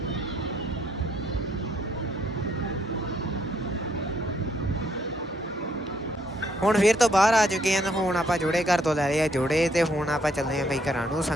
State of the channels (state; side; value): normal; both; correlation 0.70